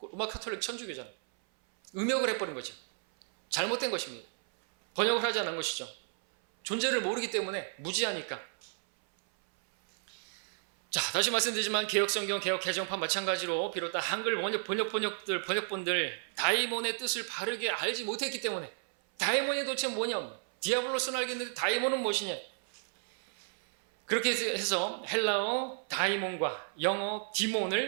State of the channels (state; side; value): silent; left; 56 dB below the other